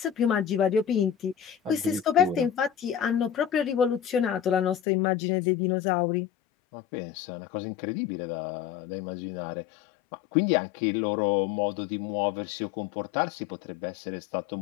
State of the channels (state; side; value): drops out; right; at 4.8 s